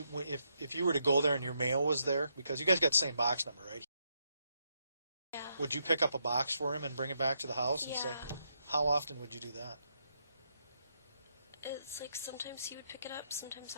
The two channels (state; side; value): inverted; both; correlation -0.79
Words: you were to go there and your mail was there, because you guys got the same box number, right? Yeah. Would you pick up a box for him and bring it back to the house and say, Yeah. how often would you do that? It's like sometimes he would pick it up, sometimes